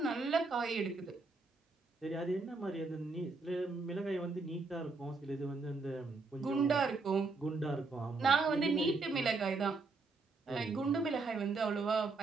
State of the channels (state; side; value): quieter; left; 3.9 dB